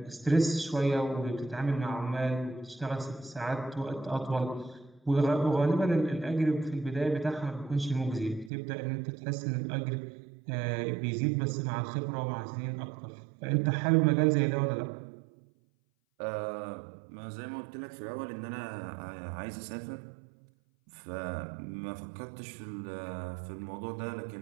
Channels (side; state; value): left; drops out; at 8.5 s